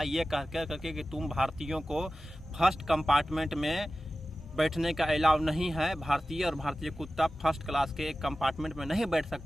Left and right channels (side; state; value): both; normal; correlation 0.95